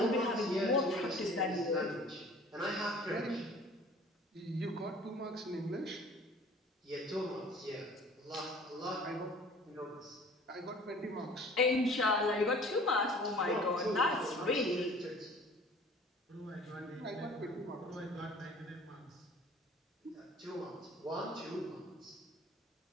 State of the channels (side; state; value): both; normal; correlation 0.48